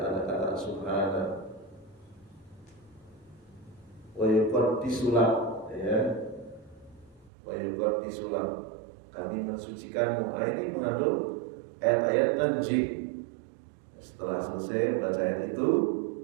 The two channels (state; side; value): drops out; left; at 7.3 s